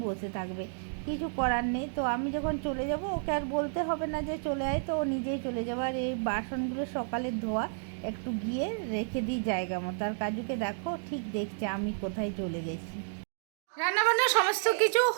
বসে থাকবে, কিছু করার নেই। তো আমি যখন চলে যাব ওকে আর বলতে হবে না যে চলে আয়, তো ও নিজেই চলে যাবে। আর এই বাসনগুলো সকালে ধোয়া, একটু গিয়ে রেখে দিই জায়গা মতো। আর কাজুকে দেখো ঠিক দেখছে আমি কোথায় চলে গেছি। রান্নাবান্না সমস্ত কিছু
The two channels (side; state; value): left; silent; digital silence